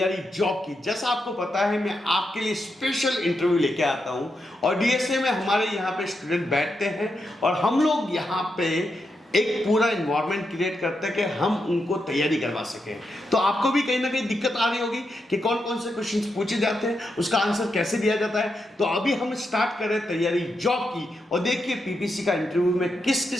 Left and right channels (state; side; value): normal; both; correlation 0.85